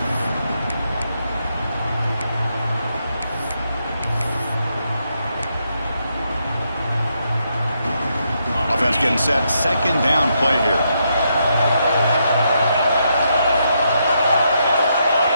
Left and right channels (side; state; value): both; inverted; correlation -0.79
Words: Offense getting set. 2nd down play here.